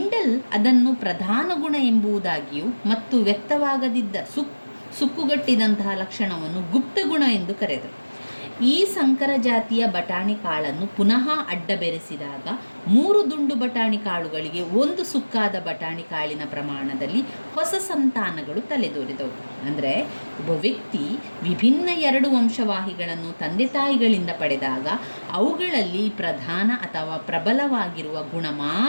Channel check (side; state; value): both; inverted; correlation -1.00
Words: ಅದನ್ನು ಪ್ರಧಾನ ಗುಣ ಎಂಬುದಾಗಿಯೂ ಮತ್ತು ವ್ಯಕ್ತವಾಗದಿದ್ದ ಸುಕ್ಕುಗಟ್ಟಿದಂತಹ ಲಕ್ಷಣವನ್ನು ಗುಪ್ತ ಗುಣ ಎಂದು ಕರೆದರು. ಈ ಸಂಕರ ಜಾತಿಯ ಬಟಾಣಿ ಕಾಳನ್ನು ಪುನಃ ಅಡ್ಡ ಬೆರೆಸಿದಾಗ 3 ದುಂಡು ಬಟಾಣಿ ಕಾಳುಗಳಿಗೆ 1 ಸುಕ್ಕಾದ ಬಟಾಣಿ ಕಾಳಿನ ಪ್ರಮಾಣದಲ್ಲಿ ಹೊಸ ಸಂತಾನಗಳು ತಲೆದೋರಿದವು. ಅಂದರೆ ಒಬ್ಬ ವ್ಯಕ್ತಿ ವಿಭಿನ್ನ 2 ವಂಶವಾಹಿಗಳನ್ನು ತಂದೆ ತಾಯಿಗಳಿಂದ ಪಡೆದಾಗ ಅವುಗಳಲ್ಲಿ ಪ್ರಧಾನ ಅಥವಾ ಪ್ರಬಲವಾಗಿರುವ ಗುಣ